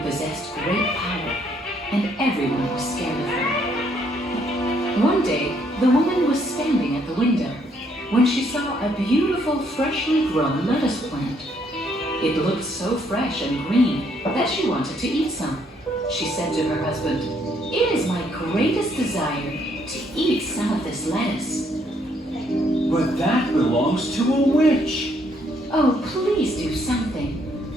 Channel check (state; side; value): normal; both; correlation 0.70